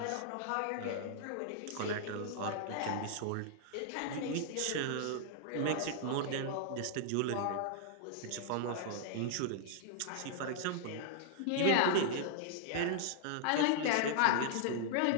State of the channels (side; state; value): both; different; correlation -0.01